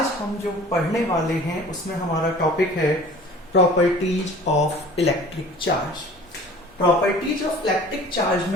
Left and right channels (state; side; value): normal; both; correlation 0.45